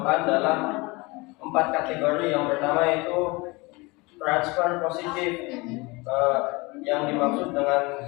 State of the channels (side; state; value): right; quieter; 25.0 dB